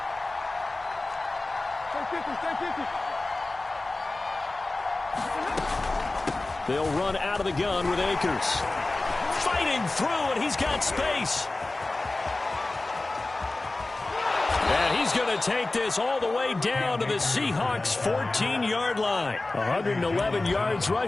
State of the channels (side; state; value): right; quieter; 3.1 dB